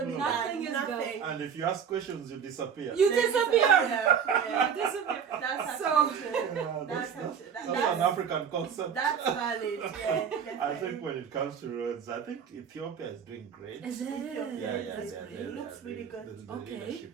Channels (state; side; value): quieter; left; 7.3 dB